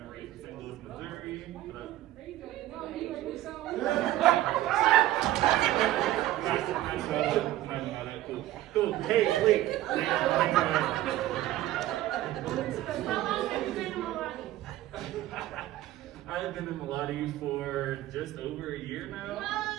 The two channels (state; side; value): quieter; left; 15.0 dB